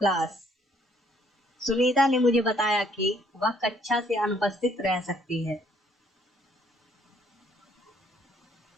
class, Sunita ने मुझे बताया कि वह कक्षा से अनुपस्थित रह सकती है।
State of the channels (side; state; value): both; normal; correlation 0.65